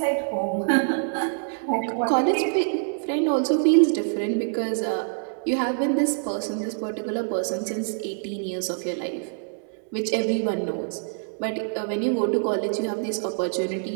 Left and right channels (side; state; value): left; silent; 61 dB below the other